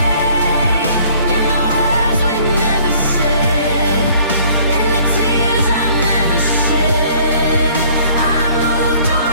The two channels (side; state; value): both; inverted; correlation -0.57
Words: in the words we never said, in the tears I never shed. I moved